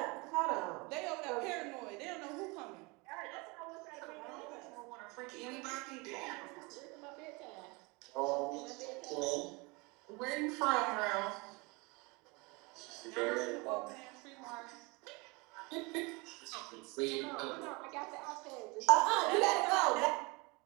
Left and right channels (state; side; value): quieter; left; 27.1 dB